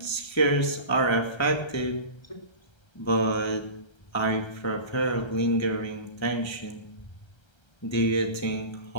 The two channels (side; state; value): right; late; 1.3 ms